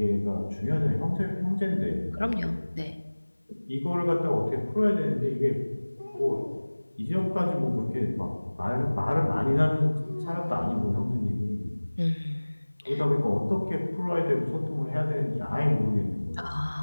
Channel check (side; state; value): both; inverted; correlation -1.00